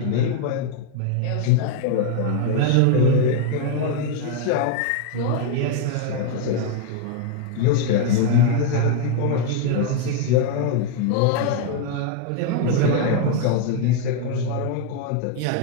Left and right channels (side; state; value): both; different; correlation 0.00